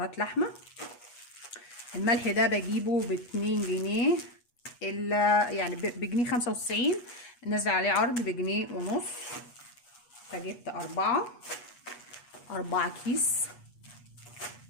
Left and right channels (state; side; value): late; right; 8.3 ms